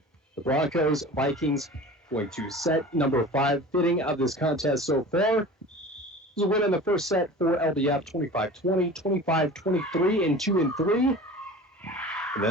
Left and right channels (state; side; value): normal; both; correlation 0.38